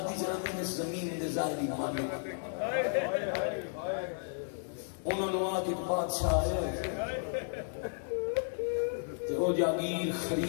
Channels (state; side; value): silent; right; 55 dB below the other